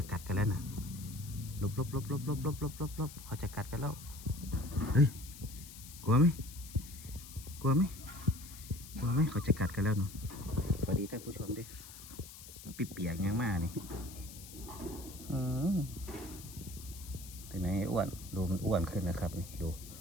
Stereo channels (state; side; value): noise; left; hiss, 15 dB below the sound